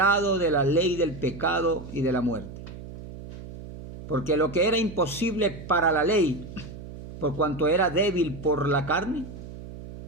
de la ley del pecado y de la muerte. Porque lo que era imposible para la ley, por cuanto era débil por la carne,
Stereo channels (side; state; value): right; noise; hum, 13 dB below the sound